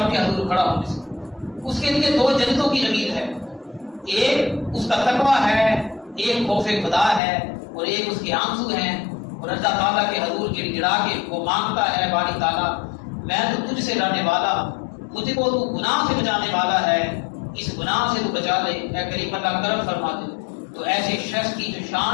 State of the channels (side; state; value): right; drops out; at 7.2 s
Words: کے حضور کھڑا ہونے سے اس کے لیے 2 جنتوں کی امید ہے. ایک اس کا تقویٰ ہے، ایک خوف خدا ہے، اور ایک اس کے آنسو ہیں. اور اللہ تعالیٰ کے حضور گڑ گڑا کے وہ مانگتا ہے باری تعالیٰ میں تو تجھ سے ڈرنے والا، مجھ کو تو گناہ سے بچانے والا ہے، اس گناہ سے تو بچا لے، اے کریم اللہ کرم فرما دے. تو ایسے شخص کی جو